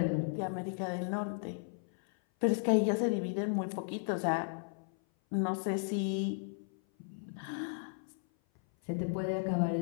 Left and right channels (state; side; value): silent; right; 54 dB below the other